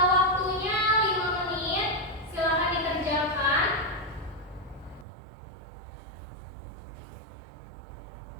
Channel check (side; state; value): left; drops out; at 5.1 s